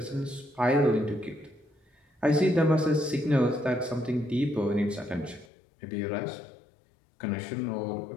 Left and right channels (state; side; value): drops out; right; at 5.5 s